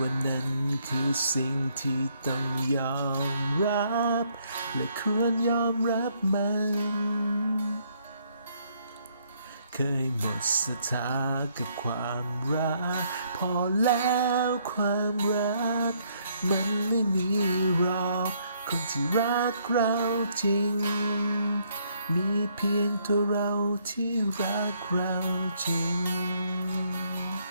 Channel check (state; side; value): inverted; both; correlation -0.69